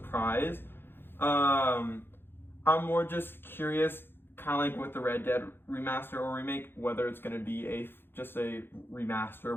I'm more just curious, kind of like with the Red Dead remaster or remake, whether it's going to be just a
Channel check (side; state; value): right; late; 0.10 ms